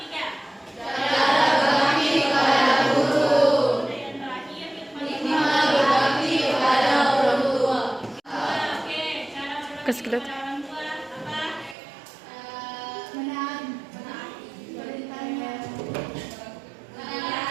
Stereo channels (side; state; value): left; drops out; at 11.8 s